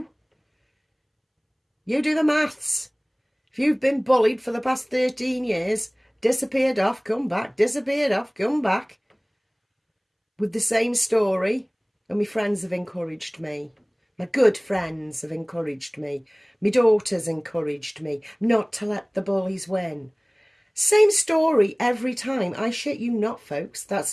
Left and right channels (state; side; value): identical; both; correlation 1.00